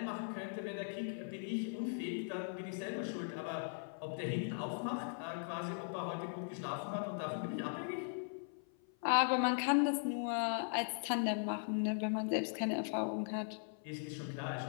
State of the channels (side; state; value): right; silent; 52 dB below the other